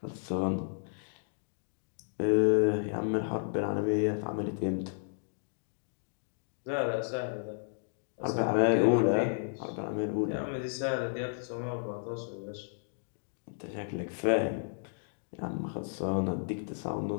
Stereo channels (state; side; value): silent; right; digital silence